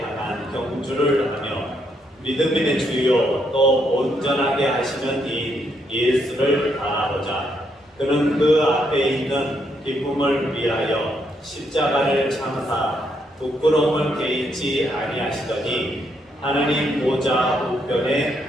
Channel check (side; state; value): both; normal; correlation 0.76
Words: 경주를 하며 믿음의 주요 또 온전하게 하시는 이 예수를 바라보자. 그는 그 앞에 있는 기쁨을 위하여 십자가를 참사 부끄러움을 개의치 아니하시더니 하나님 보좌 우편에